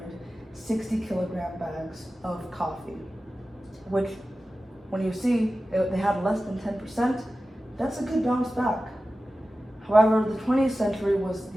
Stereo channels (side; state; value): both; normal; correlation 0.95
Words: kilogram bags of coffee, which, when you see they had less than 10%, that's a good bounce back. However, the 20th century was